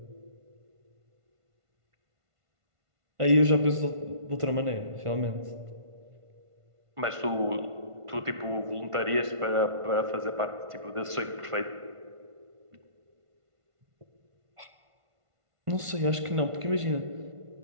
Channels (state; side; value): late; left; 1.5 ms